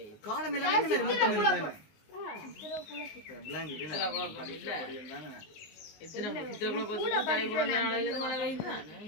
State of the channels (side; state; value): right; late; 19 ms